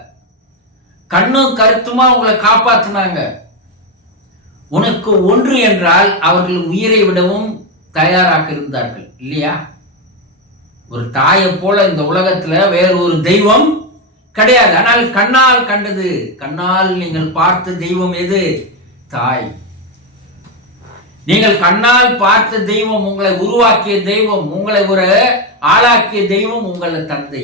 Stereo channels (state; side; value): normal; both; correlation 0.09